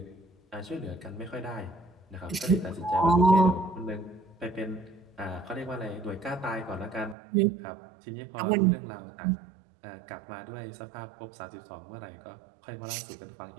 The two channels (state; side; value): drops out; left; at 7.2 s